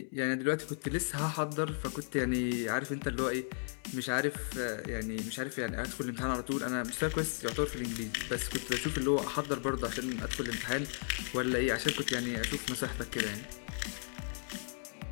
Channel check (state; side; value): silent; right; digital silence